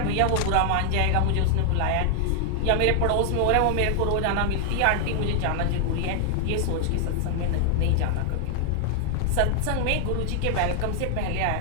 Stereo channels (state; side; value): different; both; correlation 0.00